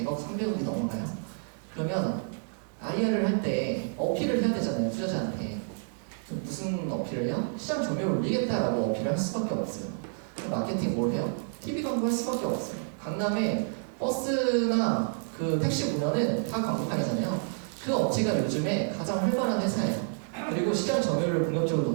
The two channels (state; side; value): silent; left; 58 dB below the other